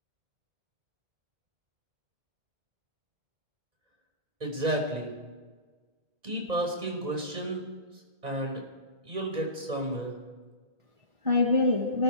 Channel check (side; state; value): left; late; 1.9 ms